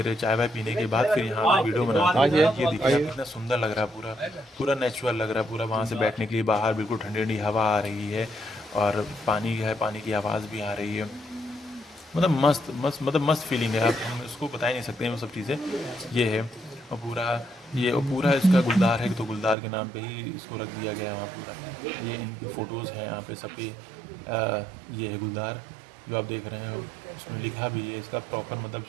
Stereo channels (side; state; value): left; drops out; at 19.6 s